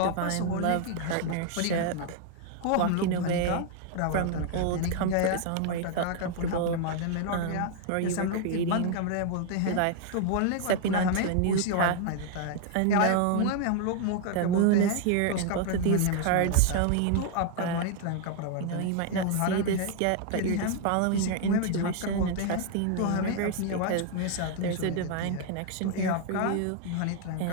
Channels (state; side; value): different; both; correlation 0.00